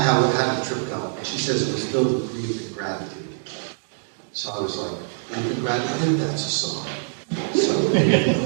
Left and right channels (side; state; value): left; silent; digital silence